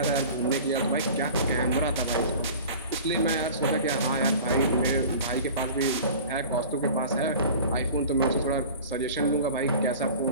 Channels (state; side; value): inverted; both; correlation -0.40